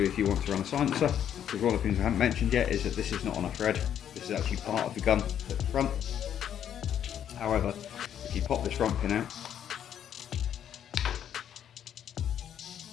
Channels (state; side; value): quieter; right; 9.6 dB